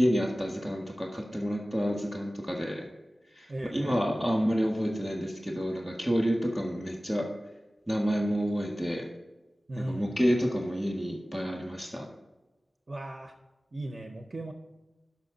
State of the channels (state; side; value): normal; both; correlation 0.97